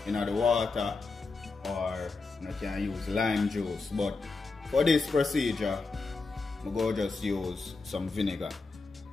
in the water, or you can use lime juice. But for this procedure, I'm going to just use some vinegar.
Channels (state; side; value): quieter; right; 3.9 dB